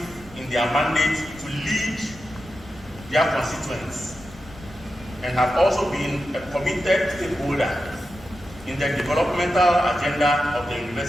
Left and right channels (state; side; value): noise; left; rumble, 19 dB below the sound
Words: in their mandate to lead their constituents and have also been a committed stakeholder in the developmental agenda of the